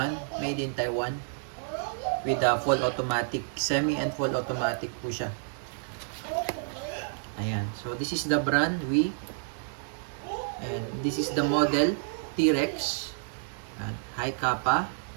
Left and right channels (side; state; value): left; silent; digital silence